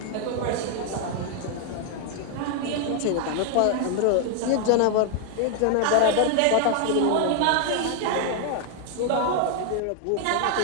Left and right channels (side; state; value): both; different; correlation 0.00